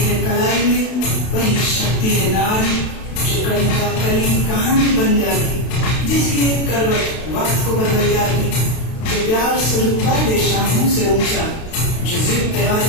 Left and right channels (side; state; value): right; late; 32 ms